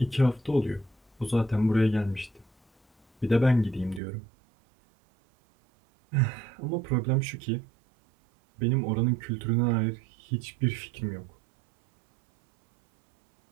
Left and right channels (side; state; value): left; drops out; at 4.0 s